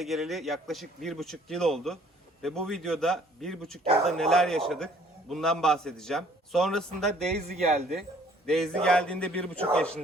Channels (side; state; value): both; normal; correlation 0.58